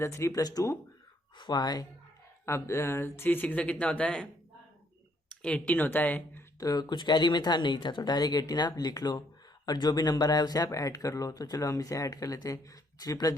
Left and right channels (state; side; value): normal; both; correlation 0.69